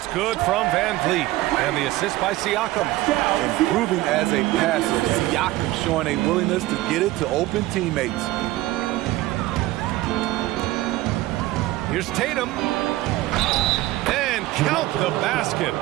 good from Van Vliet. And the assist by Siakam. Improving as a passer, Siakam showing a willingness to get it to open teammates. Here's Tatum. And count the basket.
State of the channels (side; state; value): left; quieter; 17.1 dB